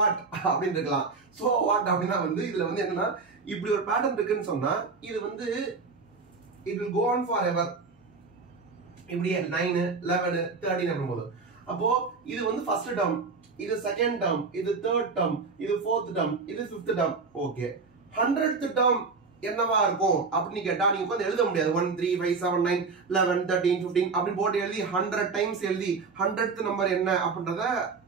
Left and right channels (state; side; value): quieter; left; 4.5 dB